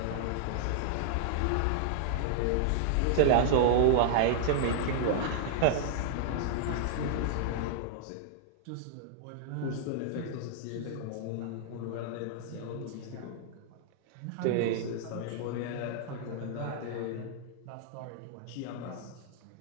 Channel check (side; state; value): both; different; correlation -0.01